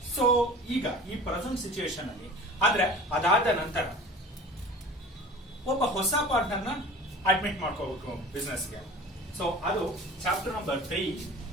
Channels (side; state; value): both; normal; correlation 0.40